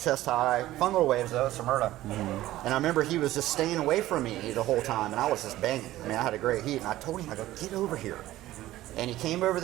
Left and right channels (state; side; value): quieter; left; 15.4 dB